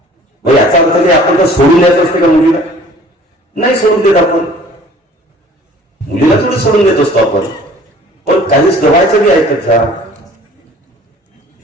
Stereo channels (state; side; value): normal; both; correlation 0.50